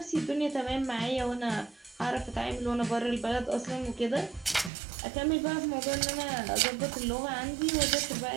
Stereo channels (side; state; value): left; drops out; at 4.7 s